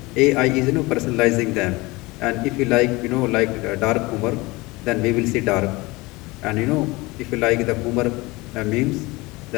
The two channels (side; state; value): right; quieter; 22.7 dB